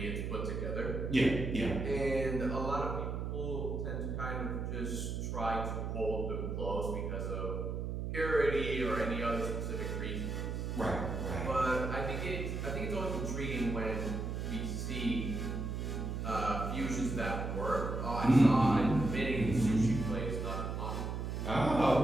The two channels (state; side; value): noise; right; hum, 3 dB below the sound